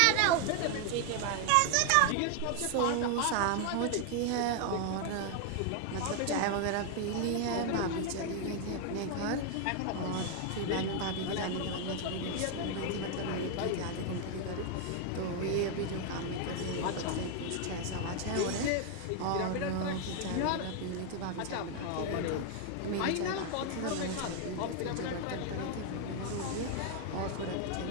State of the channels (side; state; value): both; different; correlation 0.00